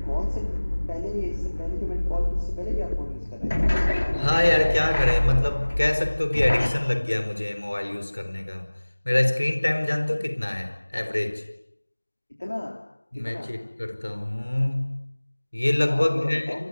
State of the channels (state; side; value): inverted; both; correlation -1.00